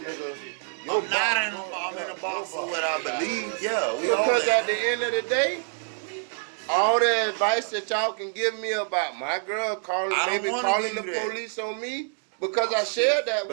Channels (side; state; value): left; silent; 56 dB below the other